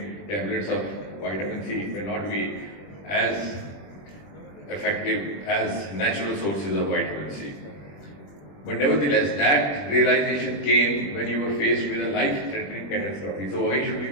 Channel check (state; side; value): late; right; 21 ms